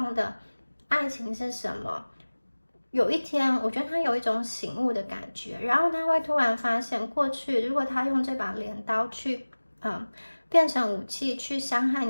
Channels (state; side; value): inverted; both; correlation -1.00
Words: 的爱情是什么。有一天，我觉得他有一种醒悟的感觉，然后他会突然发现，过去如果他用这把镰刀去，变成武器去伤害